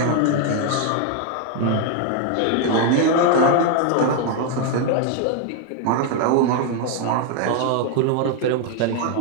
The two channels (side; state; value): both; different; correlation 0.00